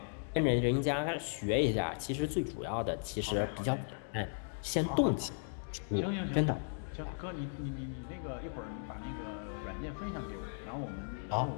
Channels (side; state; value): right; silent; digital silence